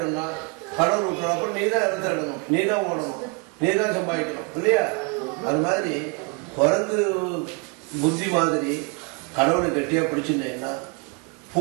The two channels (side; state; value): left; quieter; 32.9 dB